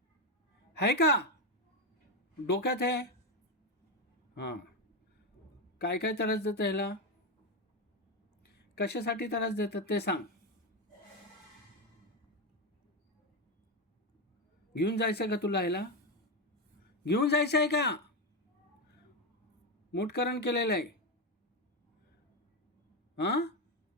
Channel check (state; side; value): normal; both; correlation 0.10